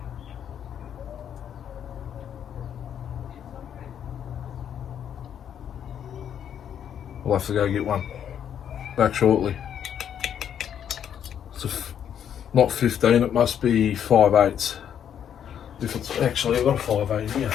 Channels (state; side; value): quieter; right; 9.1 dB